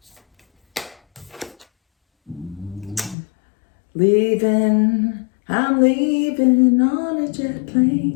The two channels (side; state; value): right; drops out; at 3.2 s